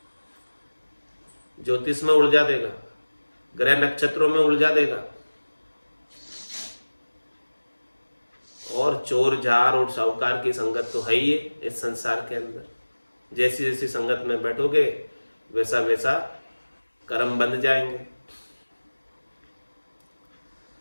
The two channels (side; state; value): both; inverted; correlation -1.00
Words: ज्योतिष में उलझा देगा, ग्रह नक्षत्रों में उलझा देगा, और चोर जार और साहूकार की संगत तो है ही है इस संसार के अंदर। जैसी जैसी संगत में बैठोगे वैसा वैसा कर्म बन जाएंगे।